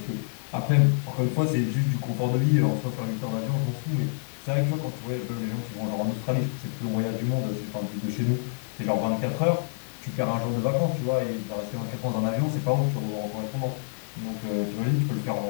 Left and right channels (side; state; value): right; silent; digital silence